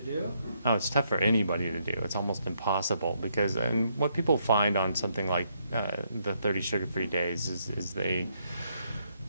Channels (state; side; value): inverted; both; correlation -0.75